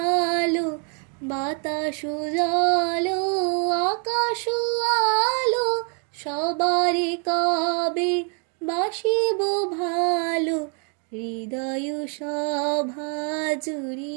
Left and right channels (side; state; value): left; quieter; 38.2 dB